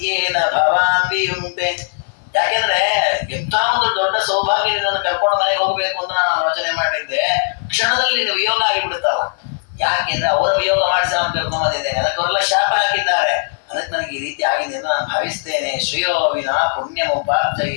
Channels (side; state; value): right; silent; 55 dB below the other